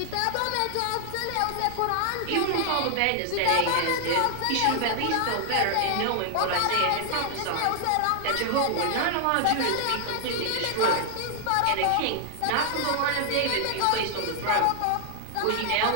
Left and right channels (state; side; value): different; both; correlation 0.00